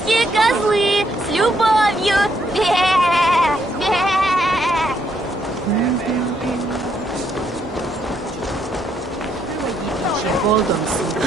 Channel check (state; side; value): normal; both; correlation 0.73